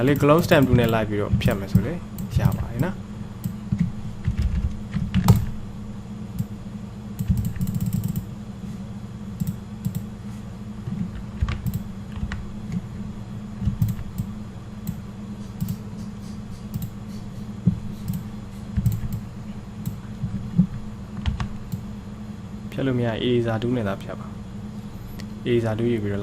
ါလေး close stamp 2နဲ့လိုက်ပြီးတော့ဖြတ်မယ်ဆိုလေရပါတယ်နော်ဖြတ်လို့မရ eraser tool နဲ့သာဖြတ်ပါ eraser tool ယူပြီးတော့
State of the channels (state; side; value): identical; both; correlation 1.00